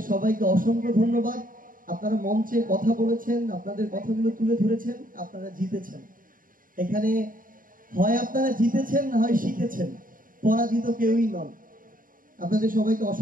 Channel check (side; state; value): left; late; 0.40 ms